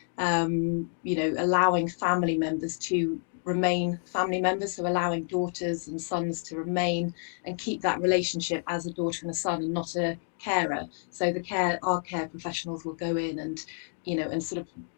allowing family members to remain family members, so allowing daughters and sons to remain and keep that relationship as a daughter and a son and not a carer. So our care professionals will go in and and sort of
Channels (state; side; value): silent; right; 59 dB below the other